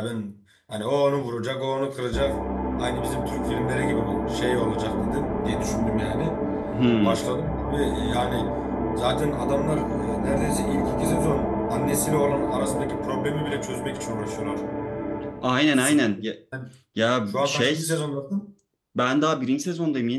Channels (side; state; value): both; identical; correlation 1.00